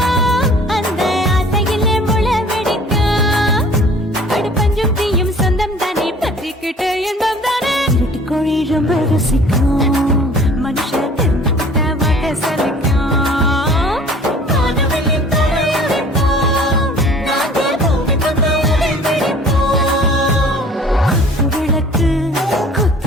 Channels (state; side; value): normal; both; correlation 0.50